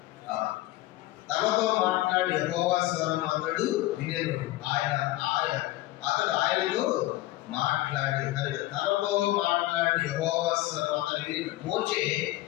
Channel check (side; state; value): right; quieter; 17.1 dB